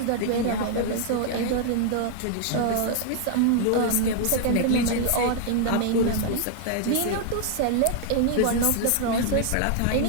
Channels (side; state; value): both; different; correlation 0.00